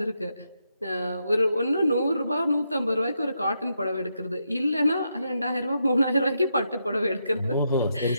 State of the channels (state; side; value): inverted; both; correlation -0.82